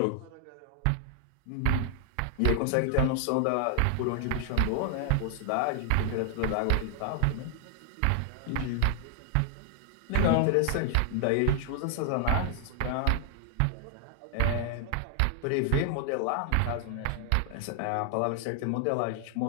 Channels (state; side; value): different; both; correlation 0.00